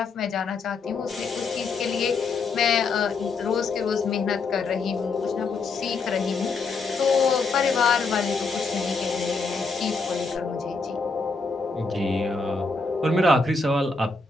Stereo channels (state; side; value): quieter; right; 4.1 dB